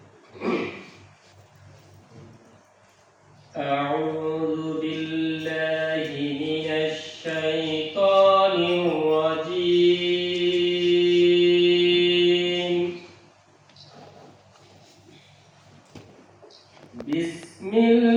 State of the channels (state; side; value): identical; both; correlation 1.00